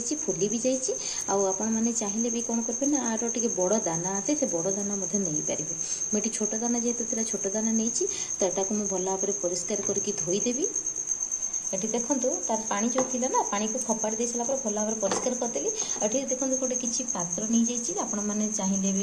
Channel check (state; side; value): identical; both; correlation 1.00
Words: फुली भी जाइए आपण मैंने चाहिए भी कौन करेंगे ना आर टे बड़ दाना आसे से बड़ दाना नहीं पारे मुझे छोट दाना जेहेतु छोट दाना नहीं तो यहाँ को मुझे भल भाव परिष्कार करके धोईदेवी ये देखो तार पानी जो थी ना पानी को खपाड़ी दे सारा भल भाव परिष्कार करदेली ये देखो गोटे किसी पात्र नहीं जाइए आपण मैंने चाहिए